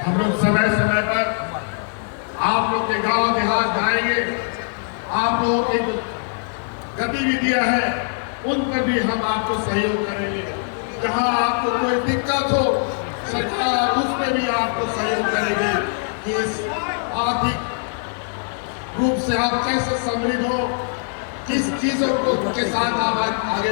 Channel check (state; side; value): silent; right; digital silence